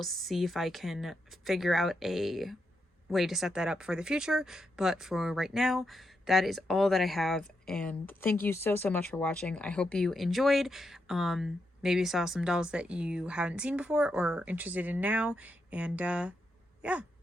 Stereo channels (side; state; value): both; normal; correlation 0.83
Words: see if I can figure out a way to set that up for the future. But for right now, that is all that I have, and thank you so much for watching. I hope you enjoyed. Maybe saw some dolls that you haven't seen before or interested in now, and yeah,